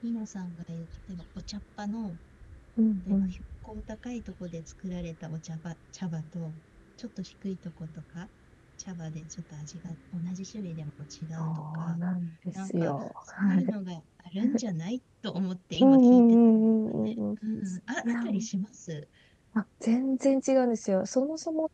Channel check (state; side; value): identical; both; correlation 1.00